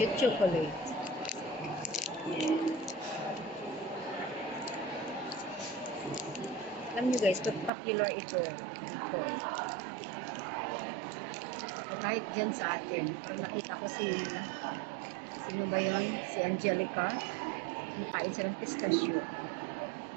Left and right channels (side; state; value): left; drops out; at 7.7 s